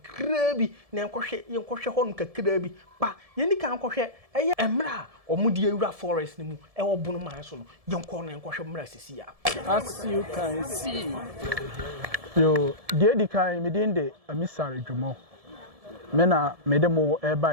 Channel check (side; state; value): left; late; 1.7 ms